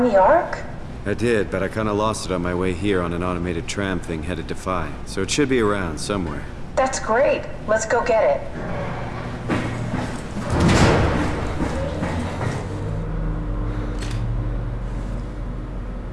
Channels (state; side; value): identical; both; correlation 1.00